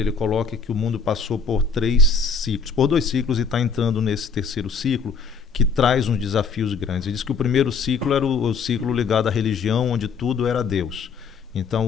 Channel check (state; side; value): quieter; right; 5.2 dB